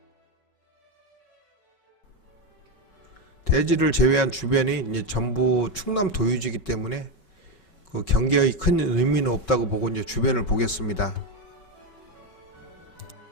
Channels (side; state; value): right; late; 5.3 ms